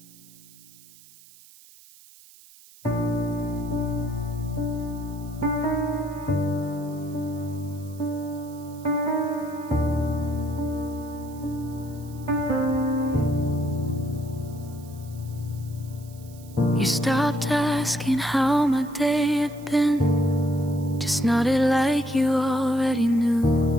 You stopped asking how my day had been, just nodded like you already knew.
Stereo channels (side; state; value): right; noise; hiss, 23 dB below the sound